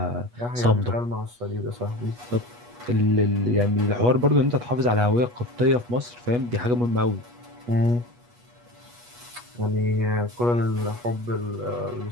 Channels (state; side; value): late; left; 8.3 ms